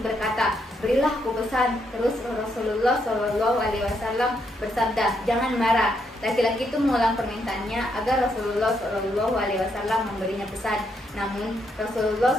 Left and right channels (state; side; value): normal; both; correlation 0.77